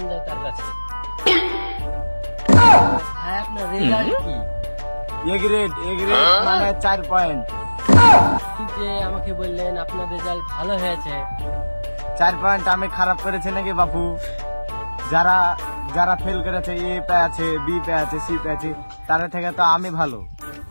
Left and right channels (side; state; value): both; inverted; correlation -1.00